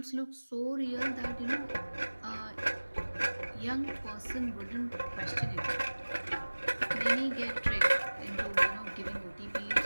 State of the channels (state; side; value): inverted; both; correlation -1.00